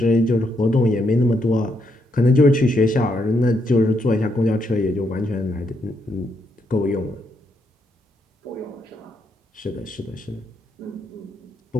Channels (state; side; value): normal; both; correlation 0.77